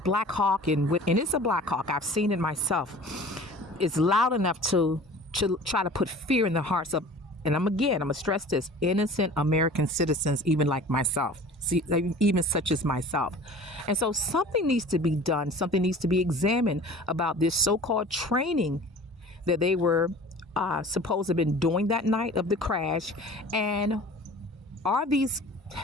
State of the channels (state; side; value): normal; both; correlation 0.43